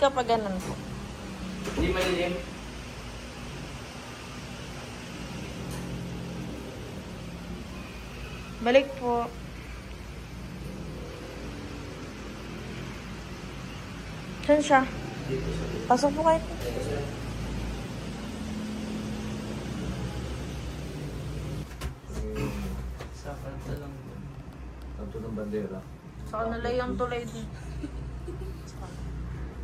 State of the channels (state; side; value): identical; both; correlation 1.00